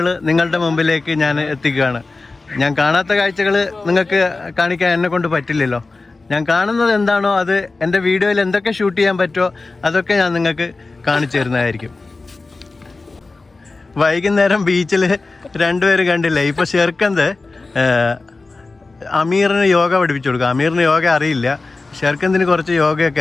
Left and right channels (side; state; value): right; quieter; 3.6 dB